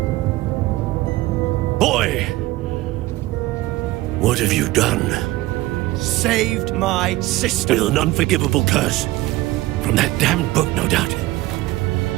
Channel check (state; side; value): quieter; left; 18.0 dB